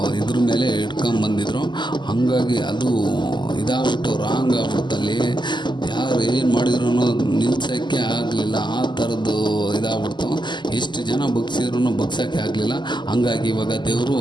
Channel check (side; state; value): right; late; 0.22 ms